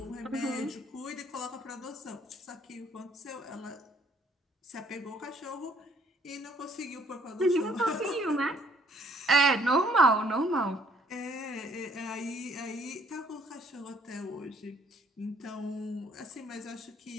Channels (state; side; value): normal; both; correlation 0.63